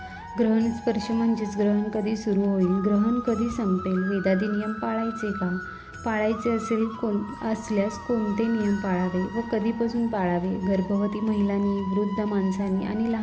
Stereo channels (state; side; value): identical; both; correlation 1.00